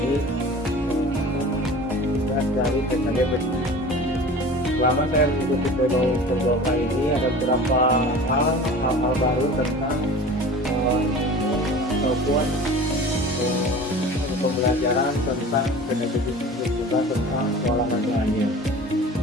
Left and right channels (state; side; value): normal; both; correlation 0.39